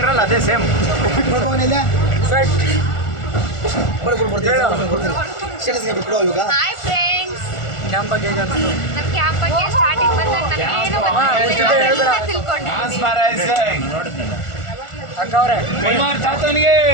ಅದೇ ಸೇಮ್. ಬರ್ತೀವಿ ಇವಾಗ ಹಾಯ್ ಫ್ರೆಂಡ್ಸ್. ಕ್ಯಾಂಪ್ ಬಗ್ಗೆ ಹೇಗೆ ಅನಿಸ್ತು? ನಮ್ಮ ಕ್ಯಾಂಪ್ ಬಗ್ಗೆ ಸ್ಟಾರ್ಟಿಂಗ್ ಬಂದಾಗ ನನಗೇನು ಗೊತ್ತಿಲ್ಲ, ತಿಳ್ಕೊಂಡಿದ್ದೀನಿ. ಅಕ್ಕ ಅವರೇ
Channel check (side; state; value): right; late; 1.4 ms